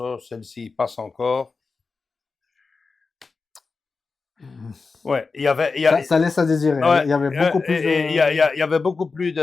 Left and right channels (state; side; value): quieter; right; 4.4 dB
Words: celle-ci passe encore. Ouais, Ça laisse à désirer. ouais, Il y avait beaucoup plus il y avait beaucoup plus